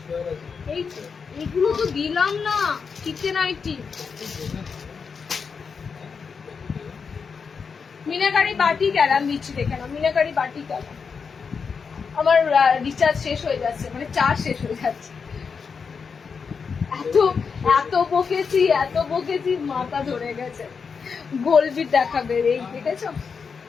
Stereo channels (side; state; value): right; quieter; 5.7 dB